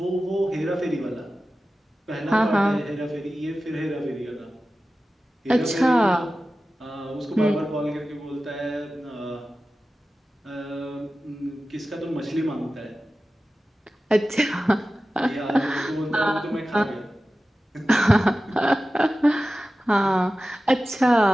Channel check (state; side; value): normal; both; correlation 0.95